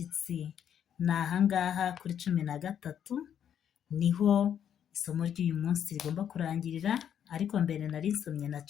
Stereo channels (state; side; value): quieter; right; 9.2 dB